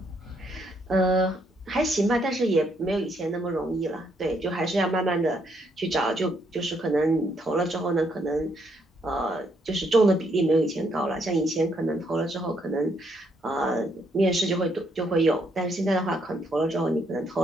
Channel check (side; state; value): both; normal; correlation 0.73